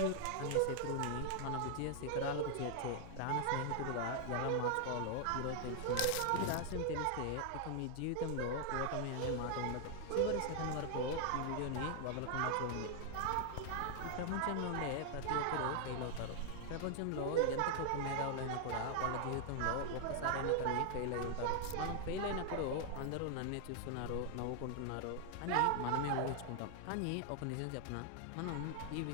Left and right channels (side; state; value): both; different; correlation 0.00